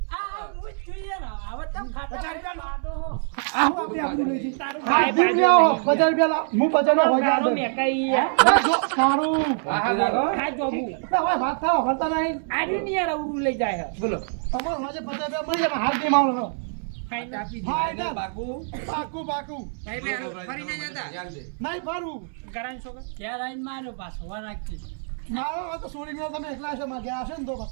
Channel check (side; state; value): left; silent; digital silence